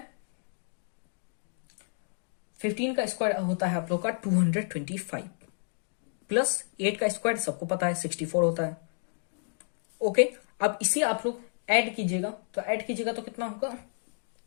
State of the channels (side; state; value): right; silent; digital silence